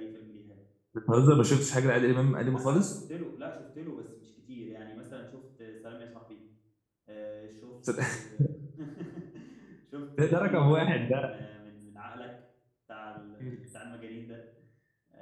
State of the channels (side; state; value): both; identical; correlation 1.00